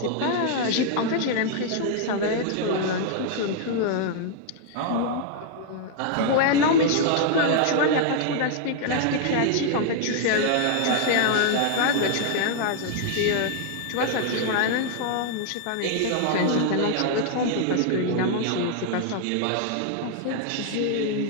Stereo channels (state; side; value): different; both; correlation 0.00